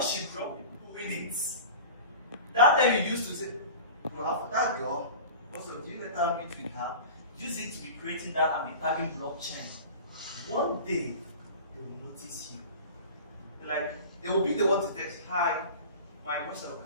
she dropped it, winnings. That time you used to say, well, that girl, also, do you let her meet with her? Use it to be creating that and be tagging blockchain. One day, they will notice you. They will be the one to text, hi, my question,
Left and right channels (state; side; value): inverted; both; correlation -0.36